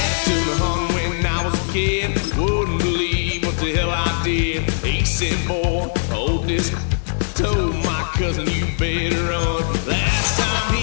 took me home when I was a kid. Wouldn't believe what the hell I did. He said, boy, hold this. Told my cousin, you better run. Last time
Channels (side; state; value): right; silent; 66 dB below the other